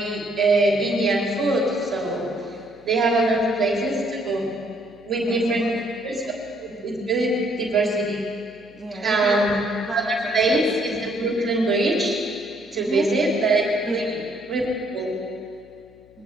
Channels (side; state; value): left; noise; hum, 28 dB below the sound